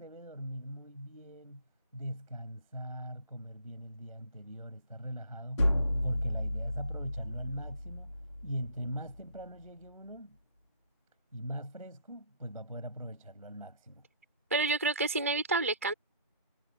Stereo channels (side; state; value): both; inverted; correlation -0.56